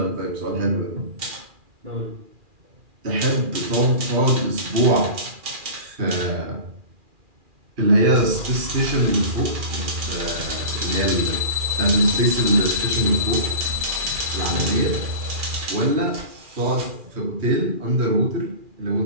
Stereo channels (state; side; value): late; left; 2.4 ms